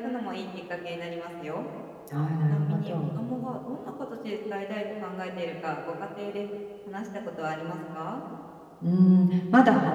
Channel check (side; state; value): both; identical; correlation 1.00